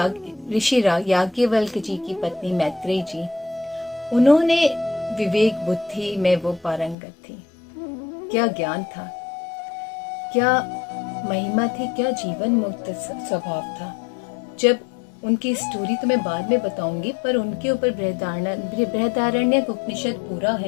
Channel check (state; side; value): drops out; right; at 7.0 s